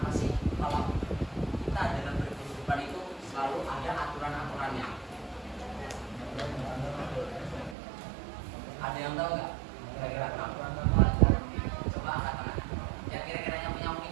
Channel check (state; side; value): drops out; left; at 7.8 s